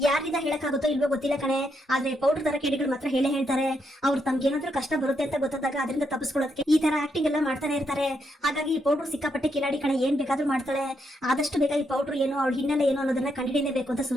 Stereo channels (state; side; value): normal; both; correlation 0.79